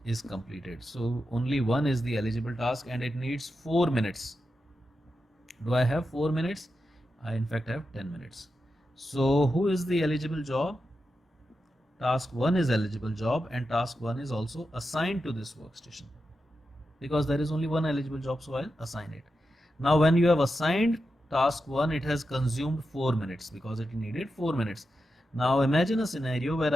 is completed. So only one is the eligible task and it needs 4 minutes. Do I have 4 minutes? I in fact have 10 minutes. So who is the eligible job? Task 1 is eligible job and task 1 is also assigned to this workstation because there is only one eligible job, so I'll assign it. Now when you have assigned task 1, it has consumed 4 minutes because it needed 4 minutes. Now imagine a scenario where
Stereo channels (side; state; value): both; normal; correlation 0.89